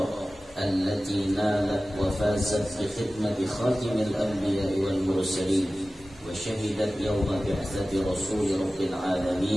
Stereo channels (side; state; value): both; normal; correlation 0.96